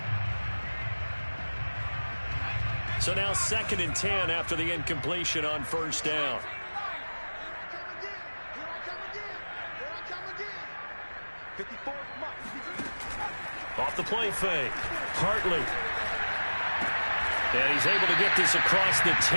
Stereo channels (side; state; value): both; inverted; correlation -1.00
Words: So now 2nd and 10 after the incompletion on first down. Off the play fake. Hartley. And he's able to get this across the